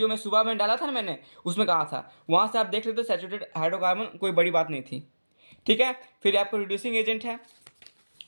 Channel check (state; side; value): inverted; both; correlation -1.00